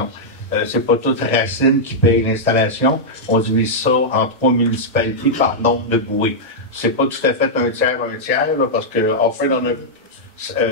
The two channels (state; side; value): normal; both; correlation -0.08